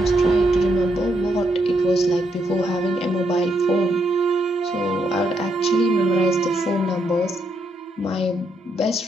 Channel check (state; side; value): normal; both; correlation 0.78